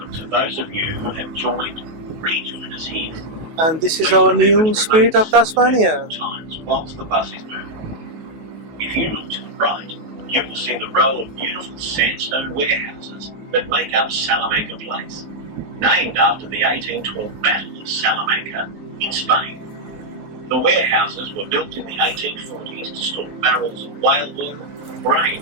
to those of you who have rejoined us here. And this is our new Spirit of Tasmania. Times whilst the bus is moving. If you look to the right, you will see the row of beautiful sandstone warehouses that make up Salamanca Place, named after the 1812 Battle of Salamanca in Spain. The warehouses were built in the 1840s to store barrels of whale oil,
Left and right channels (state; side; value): late; left; 19 ms